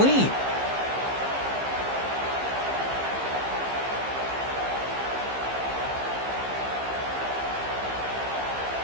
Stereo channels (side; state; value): left; late; 15 ms